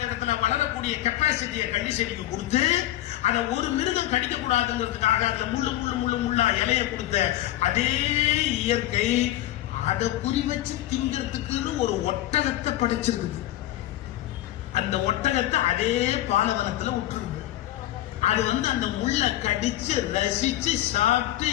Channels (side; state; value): right; quieter; 14.5 dB